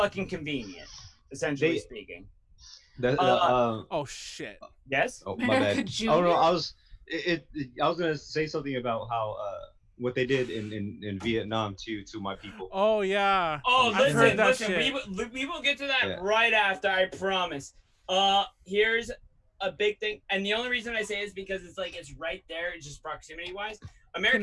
convenient, essentially speaking. Oh shit. Yes? Oh, my America bad. Junior? Oh no, I was gonna say something about how what they did in Vietnam to my people. Oh yeah. Oh, I've heard listen, that we will get to that Yeah. right after, I promise. Here's a big thing, and the only reason I say is because it's right there, it's just proximity-wise.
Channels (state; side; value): identical; both; correlation 1.00